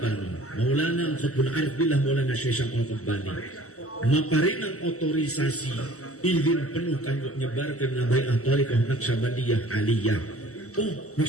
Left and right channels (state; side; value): late; right; 0.65 ms